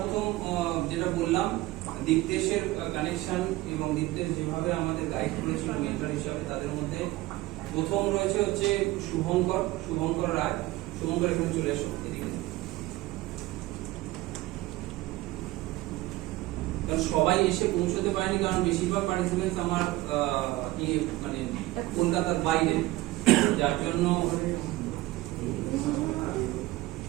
যেটা বললাম, দীপ্তেশের কানেকশন এবং দীপ্তেশ যেভাবে আমাদের গাইড করেছিল মেন্টর হিসাবে, তাদের মধ্যে প্রথম রয়েছে হচ্ছে শুভঙ্কর রায়। শুভঙ্কর এখানে চলে এসো এদিকে। কারণ সবাই এসে পৌঁছতে পারেনি, কারণ বেশিরভাগ পার্টিসিপেন্টস আমার মানে কলকাতার বাইরে, যার জন্য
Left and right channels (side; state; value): left; quieter; 18.3 dB